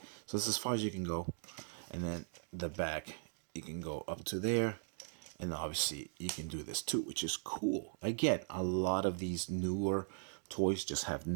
So this is as far as you can go. And then the back, you can go up to there. And obviously you can do this too, which is cool. Again, a lot of these newer toys just have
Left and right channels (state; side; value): silent; left; digital silence